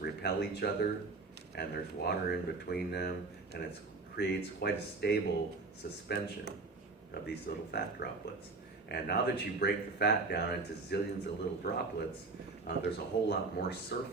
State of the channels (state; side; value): quieter; left; 3.8 dB